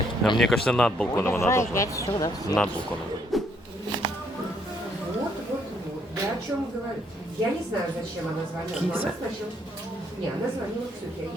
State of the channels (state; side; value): normal; both; correlation 0.70